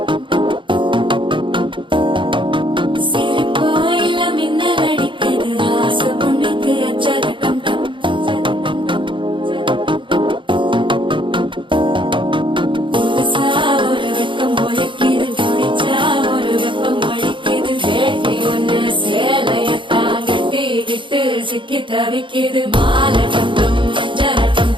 சிக்கி தவிக்கிது மால டம்டம் மஞ்சள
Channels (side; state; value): left; late; 0.24 ms